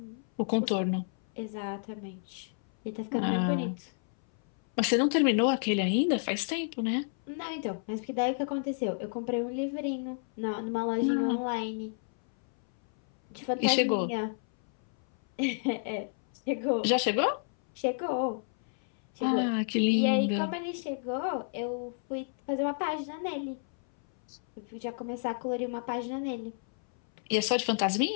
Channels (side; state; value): right; silent; 57 dB below the other